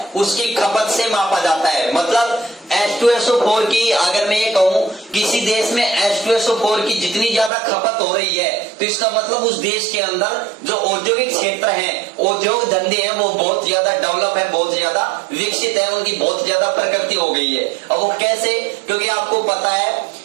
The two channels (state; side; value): drops out; left; at 7.5 s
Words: उसकी खपत से मापा जाता है। मतलब H2SO4 की अगर मैं ये कहूं किसी देश में H2SO4 की जितनी ज्यादा खपत हो रही है तो इसका मतलब उस देश के अंदर जो औद्योगिक क्षेत्र है, औद्योग धंधे हैं, वो बहुत ज्यादा डेवलप है, बहुत ज्यादा विकसित है, उनकी बहुत ज्यादा प्रगति हो गई है। अब वो कैसे, क्योंकि आपको पता